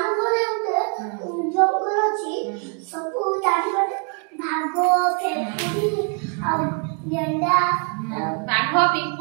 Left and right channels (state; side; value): quieter; left; 39.0 dB